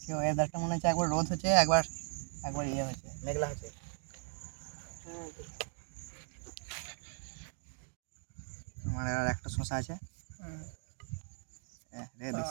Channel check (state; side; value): silent; left; 53 dB below the other